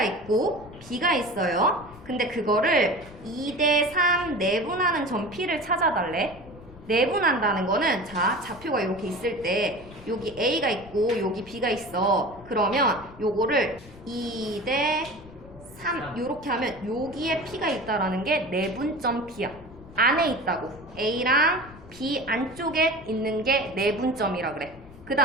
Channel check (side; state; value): left; noise; rumble, 19 dB below the sound